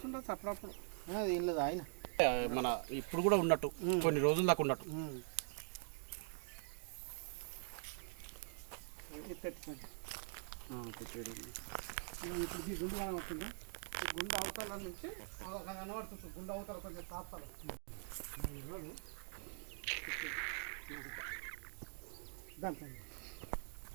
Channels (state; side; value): silent; left; digital silence